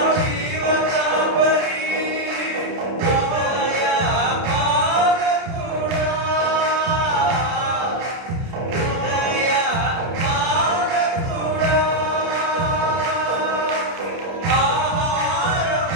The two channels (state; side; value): late; left; 30 ms